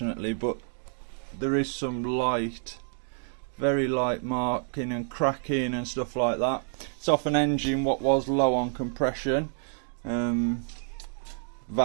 but there is some light, very light marking and cracking and stuff like that. It's off an engine what was low on compression.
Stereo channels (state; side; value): silent; left; 59 dB below the other